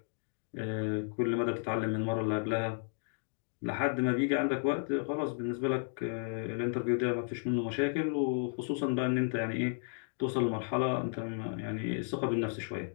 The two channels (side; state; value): right; silent; 55 dB below the other